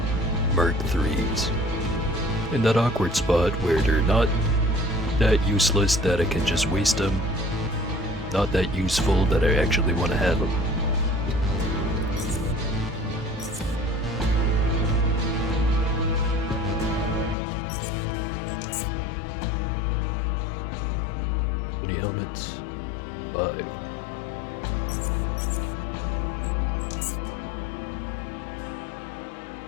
Mark 3s. In that awkward spot where they're not that useless that I can just waste them, not that useful that I actually want to have them. How many helmets? 5.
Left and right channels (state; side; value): drops out; right; at 17.4 s